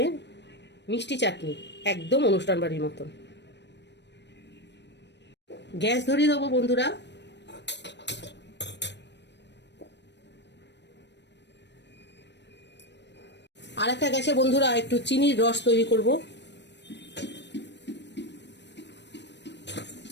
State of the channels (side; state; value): right; late; 0.51 ms